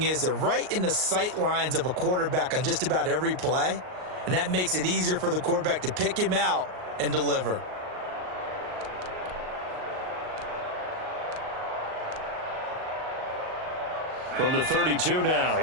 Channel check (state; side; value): late; left; 38 ms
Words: is they're right in the sight lines of a quarterback on just about every play. And that makes it easier for the quarterback to pick him out and deliver. From the 32 now,